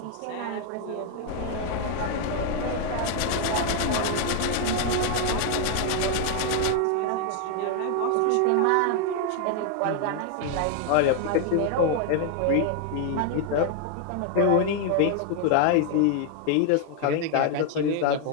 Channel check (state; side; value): different; both; correlation 0.00